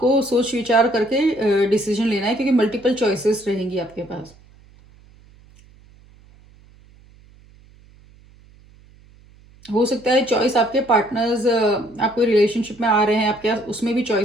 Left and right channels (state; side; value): noise; right; hum, 27 dB below the sound